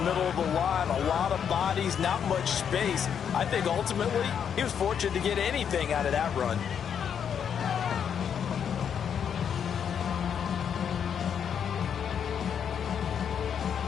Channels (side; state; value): right; quieter; 7.9 dB